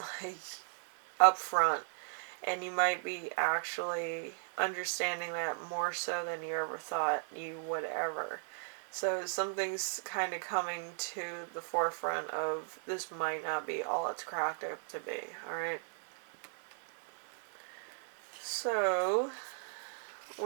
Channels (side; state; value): left; silent; 53 dB below the other